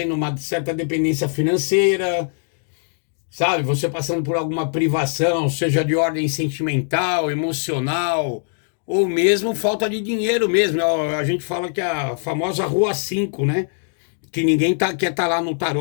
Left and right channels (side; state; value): right; silent; digital silence